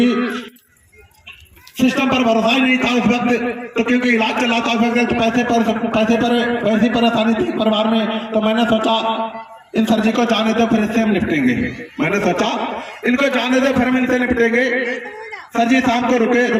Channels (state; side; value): identical; both; correlation 1.00